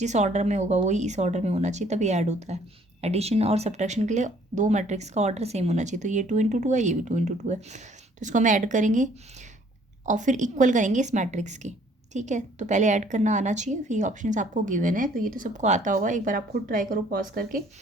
ऑर्डर में होगा वही इस ऑर्डर में होना चाहिए, तभी ऐड होता है। एडिशन और सब्ट्रैक्शन के लिए दो मैट्रिक्स का ऑर्डर सेम होना चाहिए। तो ये 2 × 2 है, ये भी 2 × 2 है। तो इसको हम ऐड करेंगे और फिर इक्वल करेंगे इस मैट्रिक्स के। ठीक है, तो पहले ऐड करना आना चाहिए, फिर ये ऑप्शंस आपको गिवन है। तो ये तो सबको आता होगा, एक बार आप खुद ट्राई करो पॉज करके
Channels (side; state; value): both; normal; correlation 0.59